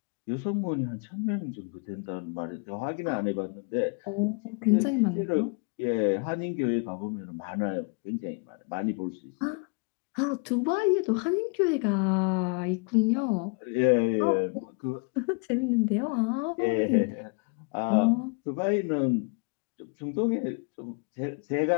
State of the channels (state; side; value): quieter; right; 33.8 dB